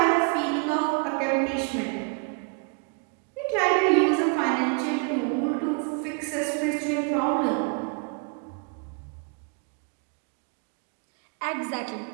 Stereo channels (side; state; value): left; quieter; 37.4 dB